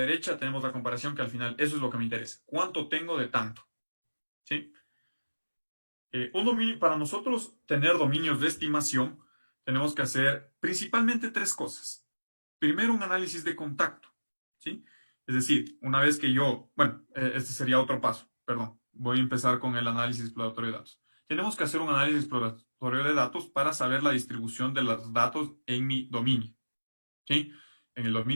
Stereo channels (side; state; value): both; inverted; correlation -1.00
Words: tenemos la comparación que al final eso es lo que me interesa. ¿Cuánto tengo de tanto? ¿Sí? Para nosotros tener dominios de estimación, tenemos que hacer principalmente tres cosas. Primero, un análisis de contacto, ¿sí? Es decir, una vez que este sería otro paso, perdón, voy a empezar con el análisis exploratorio de datos. Tenemos que hacer un análisis exploratorio de datos para saber la distribución de los datos en mi dominio, ¿sí? En el